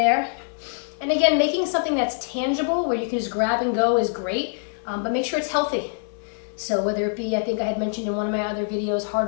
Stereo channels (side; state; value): right; silent; 62 dB below the other